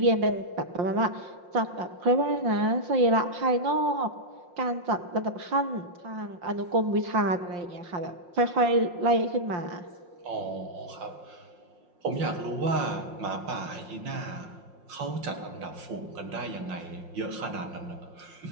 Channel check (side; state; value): left; late; 5.6 ms